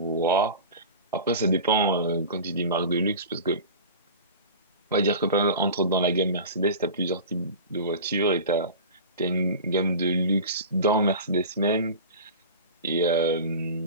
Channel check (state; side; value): inverted; both; correlation -0.33